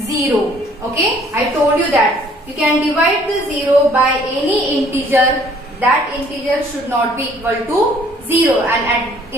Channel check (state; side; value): normal; both; correlation 0.59